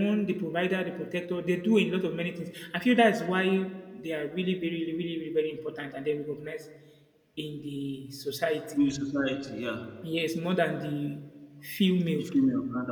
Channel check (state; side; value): identical; both; correlation 1.00